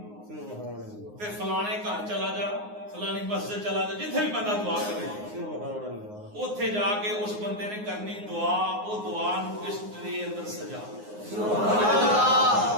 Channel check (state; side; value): late; left; 9.6 ms